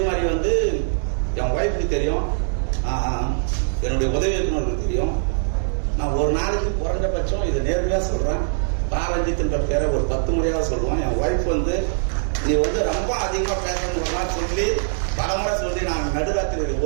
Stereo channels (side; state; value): left; silent; digital silence